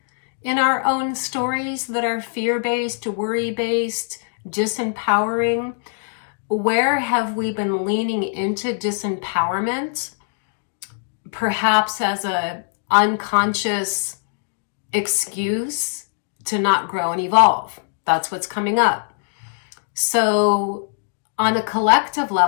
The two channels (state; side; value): silent; right; digital silence